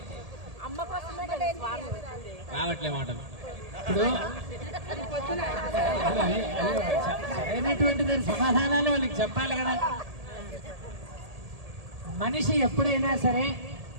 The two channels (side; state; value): left; late; 1.8 ms